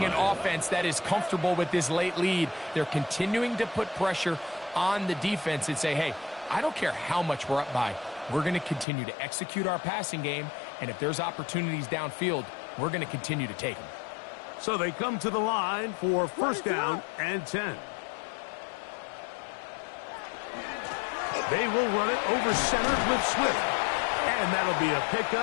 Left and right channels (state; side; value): drops out; right; at 8.8 s